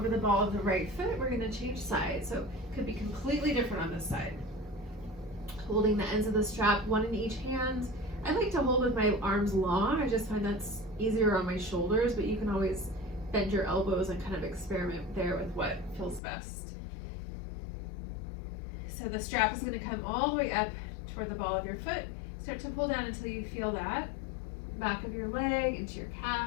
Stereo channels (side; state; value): right; drops out; at 16.2 s